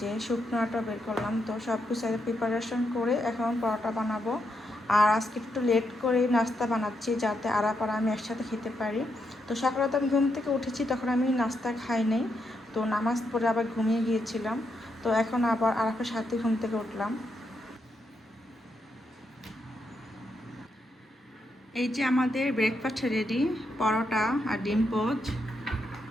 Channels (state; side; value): normal; both; correlation 0.81